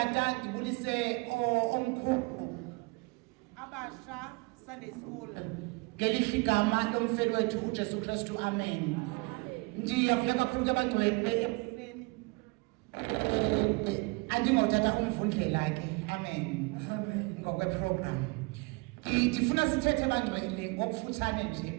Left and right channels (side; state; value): left; quieter; 28.0 dB